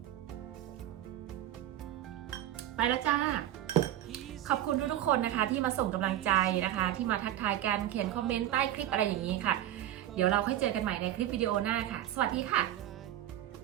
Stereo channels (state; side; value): quieter; left; 12.5 dB